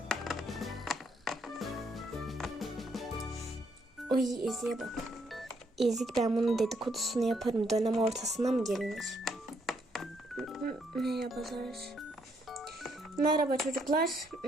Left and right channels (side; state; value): both; normal; correlation 0.73